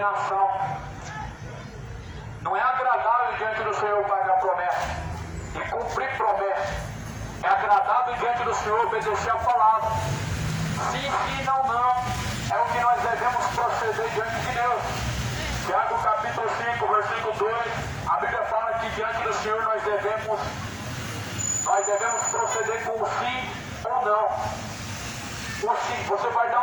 Não é agradável diante do Senhor pagar promessa e cumprir promessa. É agradável diante do Senhor obedecer a palavra. Sim, sim, não, não. É o que nós devemos proceder diante de Deus. Tiago capítulo 5, versículo 2, a Bíblia fala que diante do Senhor nós devemos proceder com o sim ou não. O sim, você vai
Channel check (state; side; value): identical; both; correlation 1.00